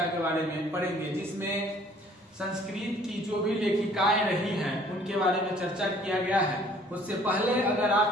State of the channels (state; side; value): normal; both; correlation 0.56